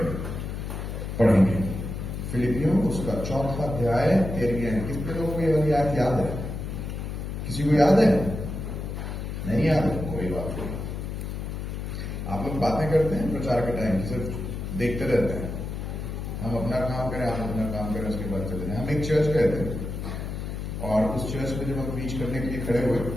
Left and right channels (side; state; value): left; noise; hum, 5 dB below the sound